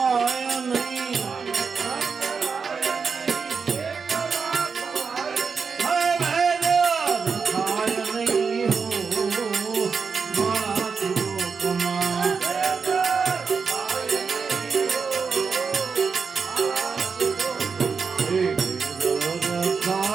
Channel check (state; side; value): quieter; left; 5.5 dB